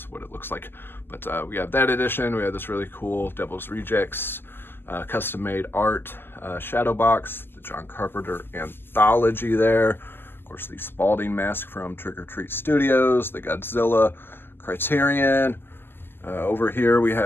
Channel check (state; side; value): late; right; 0.10 ms